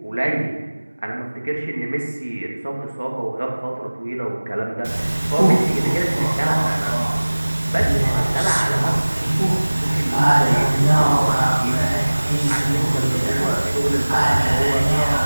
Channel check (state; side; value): inverted; both; correlation -1.00